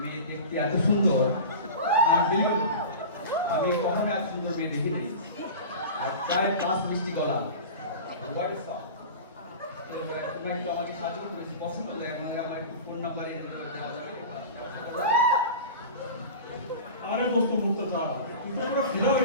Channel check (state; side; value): inverted; both; correlation -0.32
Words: মেয়ে দেখতে এত সুন্দর, আমি কখনো এত সুন্দর মেয়ে দেখি নাই। আর প্রায় ক্লাস মিষ্টি গলা, তোমরা একটু আমাকে সাহায্য করতে বেশি পছন্দ করে, আমার একটু ফোন নাম্বার দেওয়া যাবে? আরে দোস্ত মুক্তা, কিন্তু আমরা ফিরা